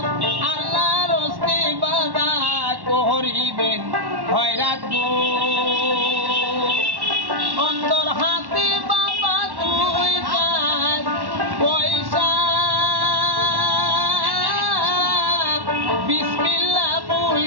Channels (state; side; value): late; left; 1.1 ms